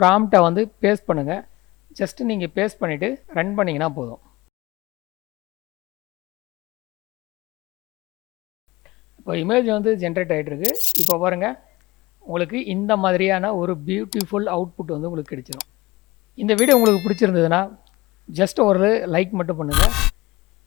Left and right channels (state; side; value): quieter; right; 20.6 dB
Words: வந்து பேஸ்ட் பண்ணுங்கள். ஜஸ்ட்டு நீங்கள் பேஸ்ட் பண்ணிவிட்டு ரன் பண்ணிங்கன்னா போதும். இப்போ இமேஜ் வந்து ஜென்ரேட் ஆகிட்டுருக்கு. இப்போ பாருங்கள், உங்களுக்கு இந்த மாதிரியான ஒரு பியூட்டிஃபுல் அவுட்புட் வந்து உங்களுக்கு கிடைச்சிடும். இந்த வீடியோ உங்களுக்கு பிடிச்சிருந்ததுன்னா ஜஸ்ட் ஒரு லைக் மட்டும் பண்ணுங்கள்.